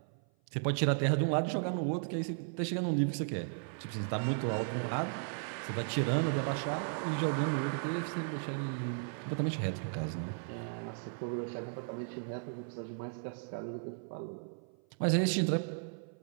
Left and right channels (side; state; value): left; silent; 54 dB below the other